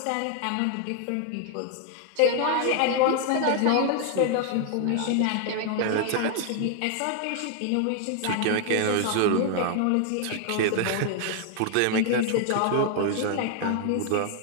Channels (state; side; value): different; both; correlation 0.00